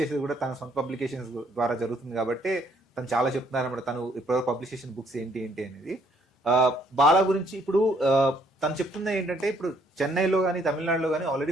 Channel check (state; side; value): normal; both; correlation 0.66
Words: చేసేది కూడా తన సొంత పబ్లికేషన్స్ ద్వారా జరుగుతుంది కాబట్టి తను చాలా చెప్తున్నారు అన్నమాట. తను ఇప్పుడు పబ్లిష్ చేసిన బుక్స్ ఏంటి ఏంటి అనేది. బాలా గురించి ఇప్పుడు తను చెప్తున్నది ఏంటంటే ఇప్పుడు చెన్నైలో కానీ తమిళనాడులో కానీ ఆల్రెడీ